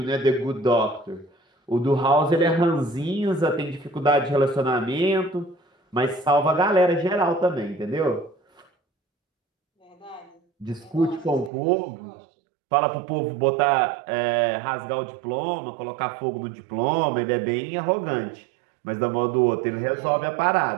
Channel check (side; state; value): left; drops out; at 11.5 s